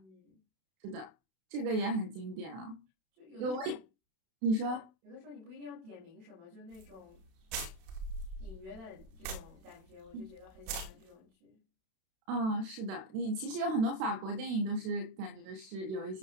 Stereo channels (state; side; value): late; left; 32 ms